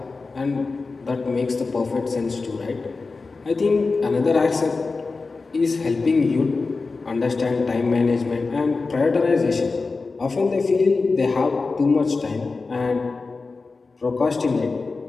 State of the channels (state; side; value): quieter; right; 4.0 dB